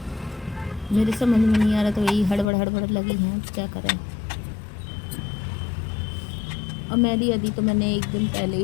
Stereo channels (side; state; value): right; drops out; at 2.5 s